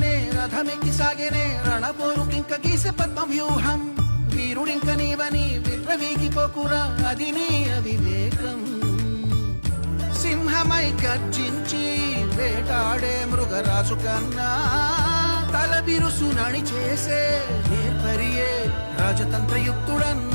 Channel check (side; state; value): both; inverted; correlation -1.00